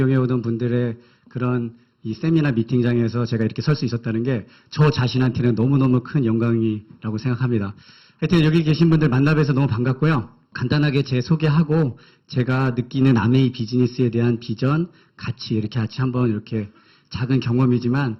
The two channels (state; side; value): identical; both; correlation 1.00